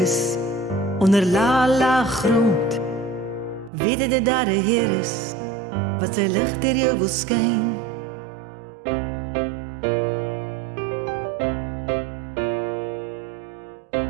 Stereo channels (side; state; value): left; drops out; at 3.7 s